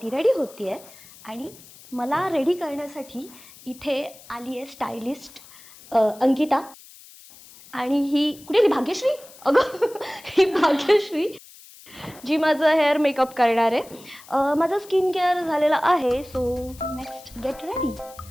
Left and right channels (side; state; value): left; noise; hiss, 21 dB below the sound